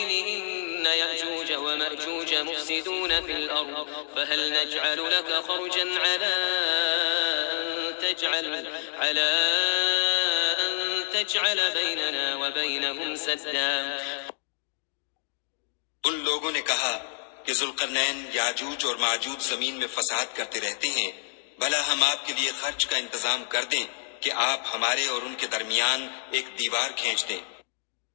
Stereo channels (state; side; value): silent; right; digital silence